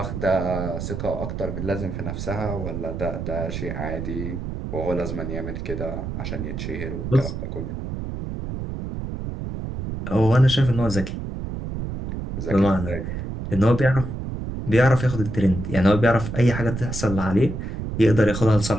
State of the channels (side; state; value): right; noise; rumble, 6 dB below the sound